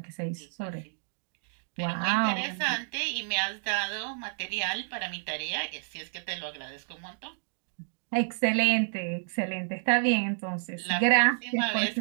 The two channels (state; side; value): silent; left; digital silence